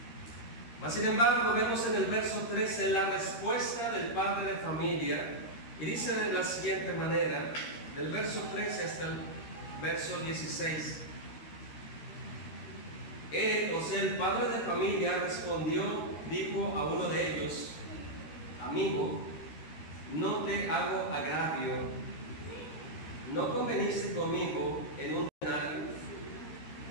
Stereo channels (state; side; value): late; right; 13 ms